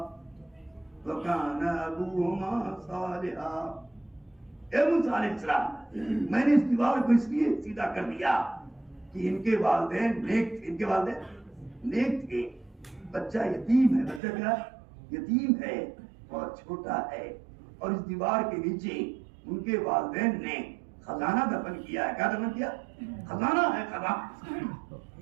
وَكَانَ أَبُوهُمَا صَالِحًا۔ اے موسیٰ علیہ السلام، میں نے اس دیوار کو اس لیے سیدھا کر دیا کہ ان کے والدین نیک تھے، ان کے والدین نیک تھے، بچہ یتیم ہے، بچہ کیا یتیم ہے اور چھوٹا ہے، اور اس دیوار کے نیچے ان کے والدین نے خزانہ دفن کیا ہے۔ کیا دفن کیا؟ خزانہ ہے، خزانہ۔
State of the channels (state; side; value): drops out; left; at 14.2 s